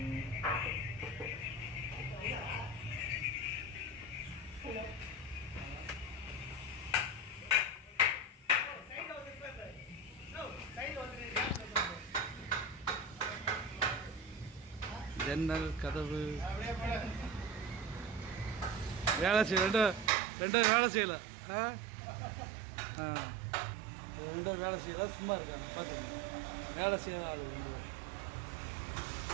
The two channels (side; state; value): left; drops out; at 20.1 s